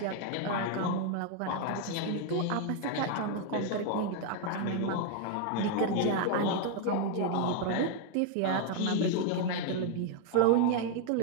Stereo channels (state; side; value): different; both; correlation 0.00